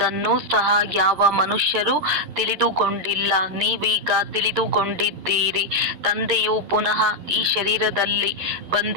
ಸಹ ಯಾವ ಮನುಷ್ಯರು ತಿಳಿದುಕೊಂಡಿಲ್ಲ. ನೀವೀಗ ತಿಳಿದುಕೊಂಡಿದ್ದೀರಿ. ತಂದೆಯು ಪುನಃ ಈ ಶರೀರದಲ್ಲಿ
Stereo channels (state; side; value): late; left; 11 ms